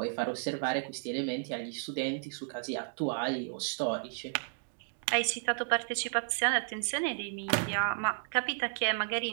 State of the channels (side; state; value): left; silent; digital silence